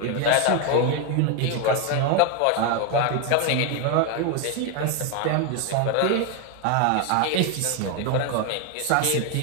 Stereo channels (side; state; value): both; different; correlation 0.01